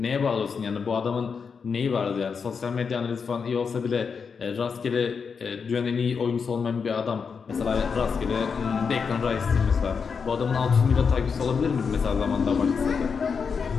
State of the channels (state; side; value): quieter; right; 5.8 dB